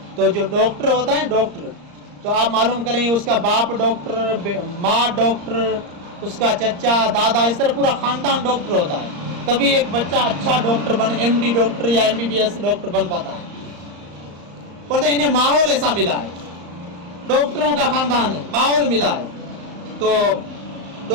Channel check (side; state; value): left; late; 34 ms